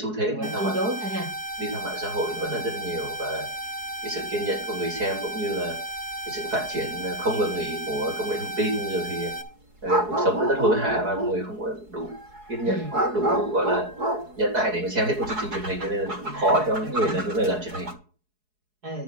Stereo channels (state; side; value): late; left; 4.7 ms